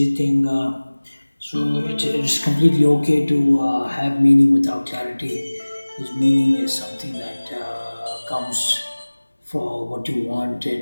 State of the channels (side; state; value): both; inverted; correlation -1.00